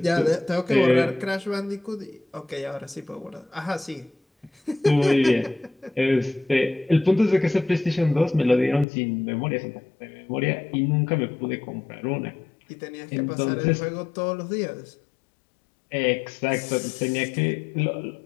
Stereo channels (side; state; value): right; drops out; at 8.8 s